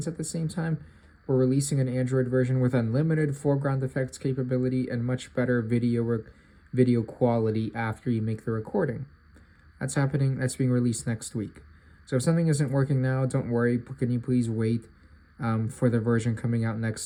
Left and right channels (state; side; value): identical; both; correlation 1.00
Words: at the same time. We're releasing an Android version with unlimited foreground effects capability and much better video quality after you make the recording. That's being released next week. So if something isn't working now, don't worry. Can you please wait for the version coming out